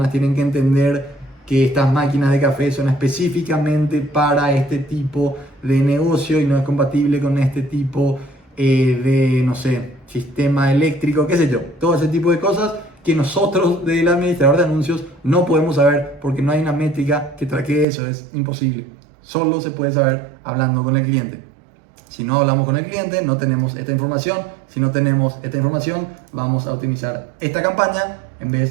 tienen que entender que estas máquinas de café son específicamente para este tipo de negocio y no es compatible con este tipo de, no sé, sistema eléctrico, qué sé yo. Todo ese tipo de cosas que nosotros del administrador de anuncios no podemos saber, porque no hay una métrica que traque eso, es imposible. Solo se puede saber hablando con el cliente. Si no hablamos con el cliente, no tenemos esta información. Si no tenemos esta información, vamos a optimizar esta campaña en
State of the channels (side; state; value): left; drops out; at 17.9 s